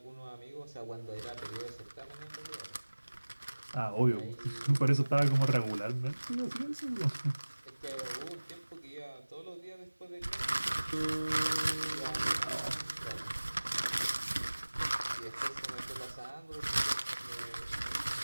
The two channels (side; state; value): both; inverted; correlation -1.00